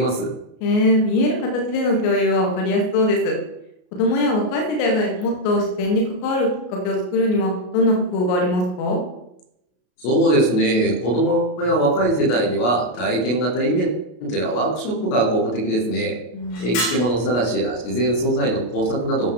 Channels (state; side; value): late; right; 33 ms